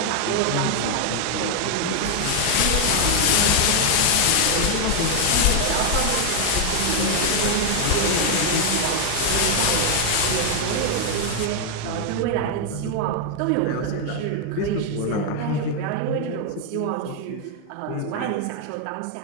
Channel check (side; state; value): both; different; correlation 0.00